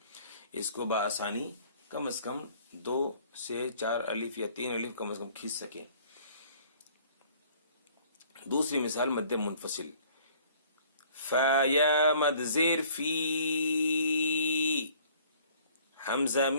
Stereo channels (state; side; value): inverted; both; correlation -0.55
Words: اس کو بآسانی کم از کم 2 سے 4 الف یا 3 الف کم از کم کھینچ سکیں. دوسری مثال مد منفصل. فا یا مد زیر فی، حمزہ